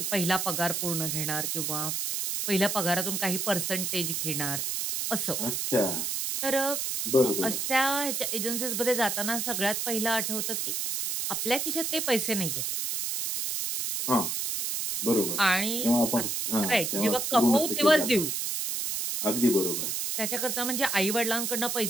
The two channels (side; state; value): right; noise; hiss, 1 dB below the sound